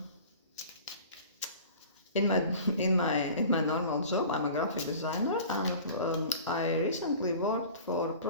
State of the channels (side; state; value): both; inverted; correlation -0.41